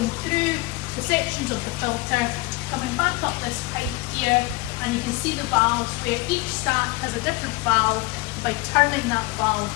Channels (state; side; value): quieter; right; 21.3 dB